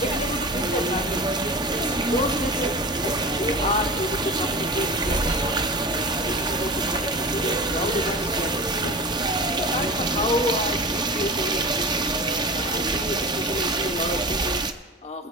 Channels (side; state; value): both; normal; correlation 0.31